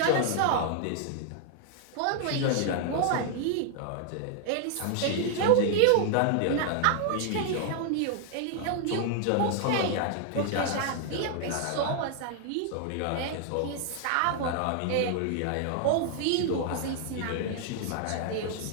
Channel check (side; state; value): both; different; correlation 0.00